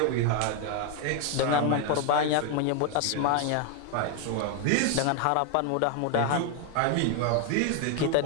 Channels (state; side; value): different; both; correlation 0.01